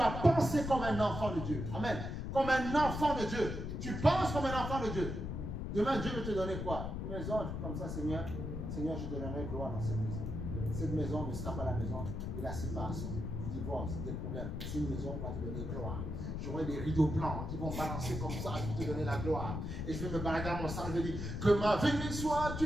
penser comme un enfant de Dieu. Amen. Comme un enfant de Dieu. Tu penses comme un enfant de Dieu. Demain, Dieu veut te donner quoi? Une maison comme ça, Seigneur. Seigneur, je te donnerai gloire dans cette maison. Cette maison ne sera pas la maison de la séparation, du divorce, des problèmes. Mais c'est une maison qui va te donner gloire. J'aurai des rideaux blancs qui vont balancer comme ça, je vais te donner la gloire. Et je vais me balader dans mon sang, je vais dire que ma venue soit.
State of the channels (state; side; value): noise; left; rumble, 4 dB below the sound